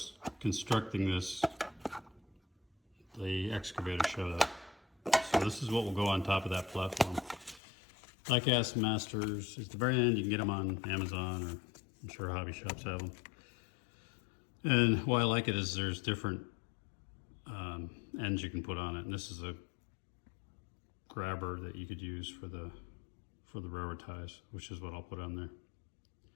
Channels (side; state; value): right; drops out; at 7.6 s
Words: constructing this, the excavator showed up. So this is what will go on top of that platform. Die-cast masters. At the very end, you can get them on Amazon, or I'm sure hobby shops have them. And why I like it is there's different ends you can put on it. And this is a grabber that you could use for the railroad ties, which is what I'll put on there.